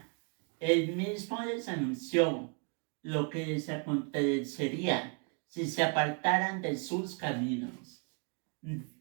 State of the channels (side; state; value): left; quieter; 37.4 dB